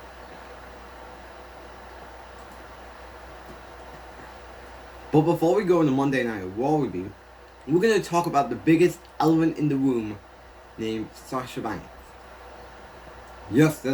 But before we go into Monday Night Raw review, we're going to talk about the biggest elephant in the room named Sasha Banks. Yes,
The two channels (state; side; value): identical; both; correlation 1.00